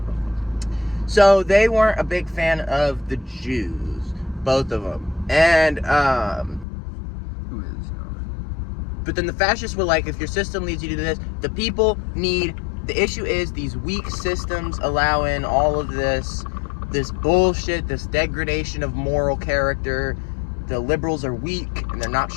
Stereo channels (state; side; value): drops out; right; at 6.7 s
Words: so they weren't a big fan of the Jews, both of them. And who is? But then the fascists were like, if your system leads you to this, the people need. The issue is these weak systems allow in all of this bullshit, this degradation of moral character. The liberals are weak and they're not